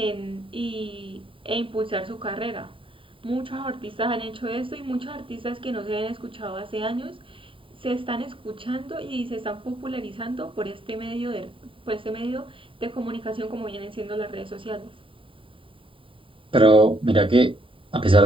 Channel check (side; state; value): left; late; 0.25 ms